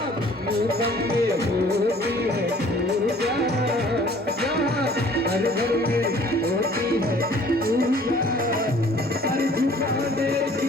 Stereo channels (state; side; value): normal; both; correlation 0.53